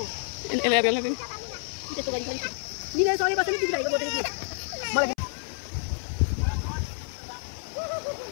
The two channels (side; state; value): right; silent; 56 dB below the other